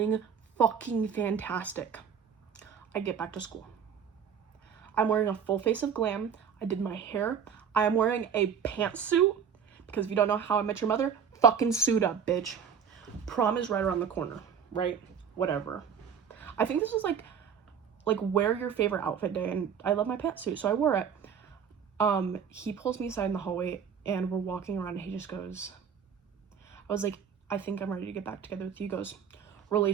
fucking fantastic. I get back to school. I'm wearing a full face of glam. I did my hair. I am wearing a pantsuit because if you don't know How I Met Your Mother, fucking suit up, bitch. Prom is right around the corner, right? Whatever. I think this was like wear your favorite outfit day, and I love my pantsuit, so I wore it. He pulls me aside in the hallway, and we're walking around, and he just goes, I was like, I think I'm ready to get back together with you. He goes,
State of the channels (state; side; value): quieter; left; 7.3 dB